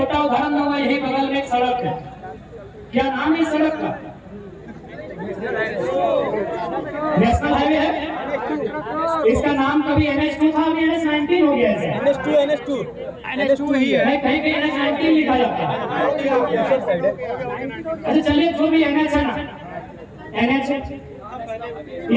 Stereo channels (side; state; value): both; identical; correlation 1.00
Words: उदाहरण दूंगा। यही बगल में एक सड़क है, क्या नाम है इस सड़क का? नेशनल हाईवे है। इसका नाम कभी NH2 था, अभी NH19 हो गया है। NH2 ही है, कहीं कहीं NH19 लिखा जाता है। अच्छा चलिए, जो भी NH है ना, NH